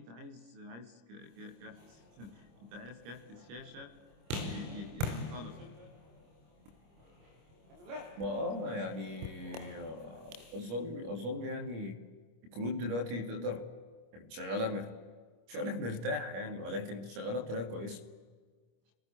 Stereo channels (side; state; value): left; late; 25 ms